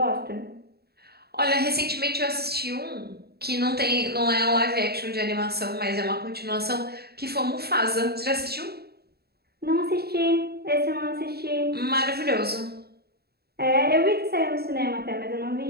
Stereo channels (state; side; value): late; left; 0.46 ms